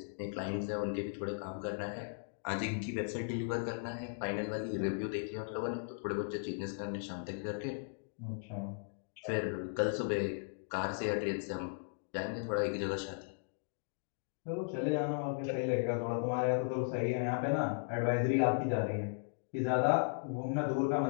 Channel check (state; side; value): silent; right; digital silence